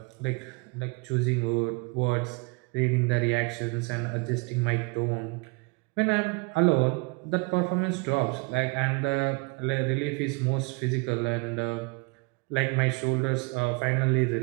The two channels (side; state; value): left; quieter; 29.2 dB